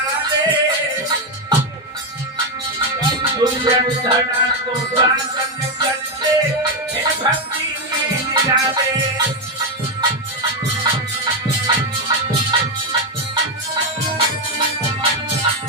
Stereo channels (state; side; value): normal; both; correlation 0.06